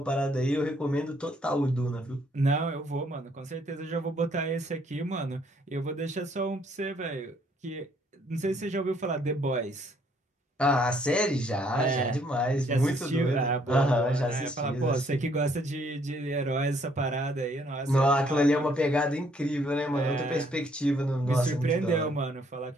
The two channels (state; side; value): normal; both; correlation 0.66